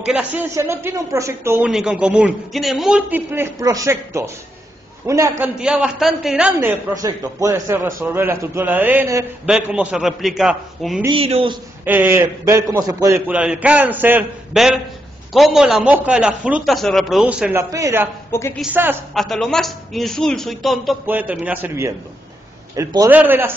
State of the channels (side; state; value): both; normal; correlation 0.82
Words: la ciencia no tiene un proyecto único en común, tiene múltiples proyectos. Una cantidad bastante grande de proyectos. Puede ser resolver la estructura del ADN, ver cómo se replica un virus, ver cómo se puede curar el cáncer, ver cómo la mosca de la fruta se reproduce en la pera, porque quizás hasta lo más insulso y tonto puede terminar sirviendo. El poder de la